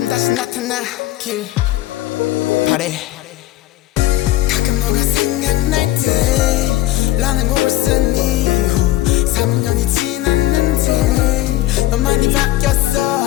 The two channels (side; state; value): right; quieter; 15.7 dB